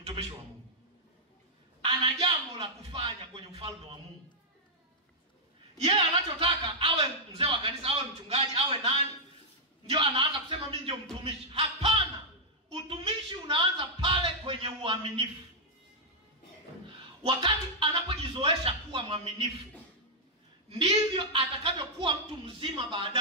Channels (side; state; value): both; normal; correlation -0.06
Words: wa Mungu, ana jambo la kufanya kwenye ufalme wa Mungu. Yeye anachotaka awe mzee wa kanisa, awe mchungaji, awe nani, ndio anaanza kusema mimi ndio mtumishi. Hapana, utumishi unaanza pale kwenye uaminifu. Wakati anapojizoesha kuwa mwaminifu, ndivyo atakavyokuwa mtu mzima